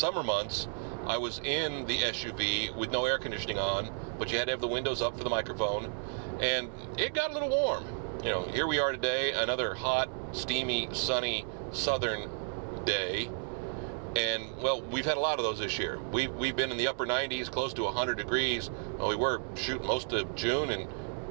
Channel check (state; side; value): silent; left; 56 dB below the other